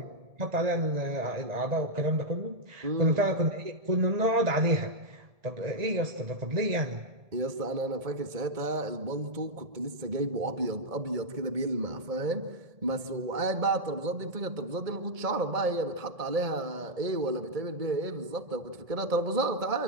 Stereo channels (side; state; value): left; late; 1.7 ms